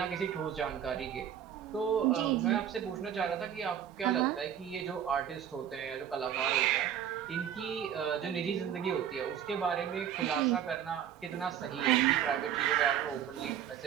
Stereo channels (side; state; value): left; quieter; 9.6 dB